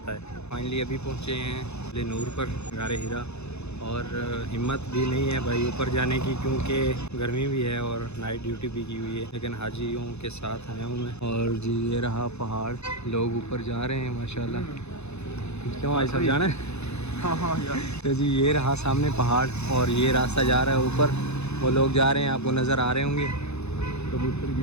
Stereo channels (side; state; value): right; late; 0.81 ms